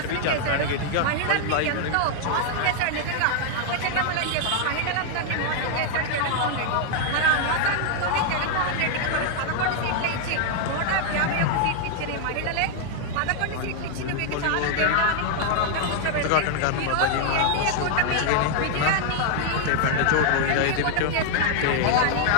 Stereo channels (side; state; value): both; different; correlation 0.00